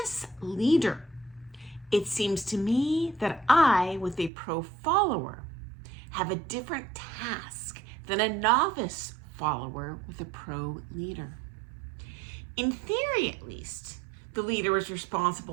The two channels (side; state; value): left; drops out; at 4.3 s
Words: leader, it seems to me that I, with a pro follower, have a different task than a novice follower with a pro leader. In theory, at least, the leader is